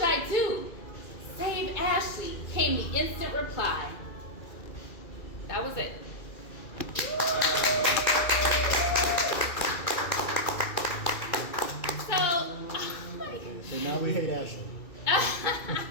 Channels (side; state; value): right; late; 2.3 ms